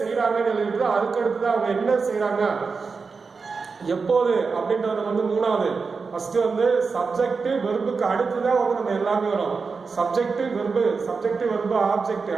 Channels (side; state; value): left; quieter; 4.8 dB